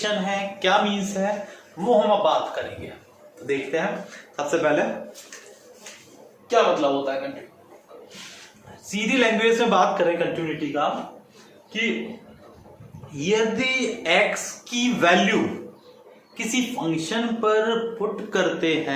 है, क्या मीन्स है, वो हम अब बात करेंगे। तो देखते हैं, सबसे पहले क्या मतलब होता है कंटिन्यूटी। सीधी लैंग्वेज में बात करें कंटिन्यूटी का, कि यदि x की वैल्यू किसी फंक्शन पर पुट करते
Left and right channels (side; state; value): both; identical; correlation 1.00